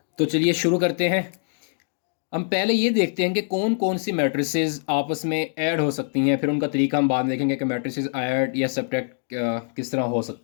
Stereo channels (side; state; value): right; silent; digital silence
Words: तो चलिए शुरू करते हैं। हम पहले ये देखते हैं कि कौन कौन सी मैट्रिसेस आपस में ऐड हो सकती हैं, फिर उनका तरीका हम बाद में देखेंगे कि मैट्रिसेस ऐड या सब्ट्रैक्ट किस तरह हो